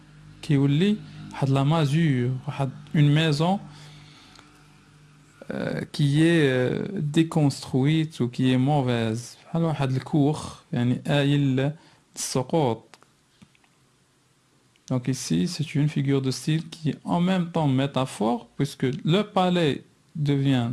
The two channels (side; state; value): both; identical; correlation 1.00